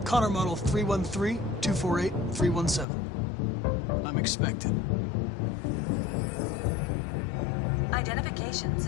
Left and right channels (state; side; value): drops out; right; at 2.9 s